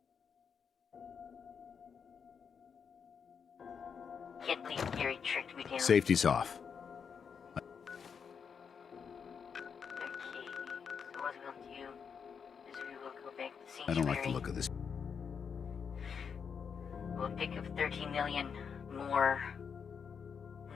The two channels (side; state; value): right; quieter; 6.6 dB